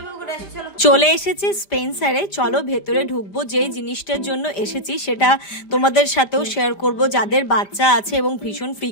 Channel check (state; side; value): late; right; 5.0 ms